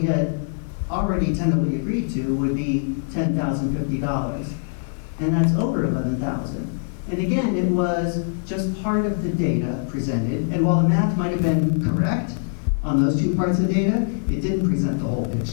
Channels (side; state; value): right; silent; digital silence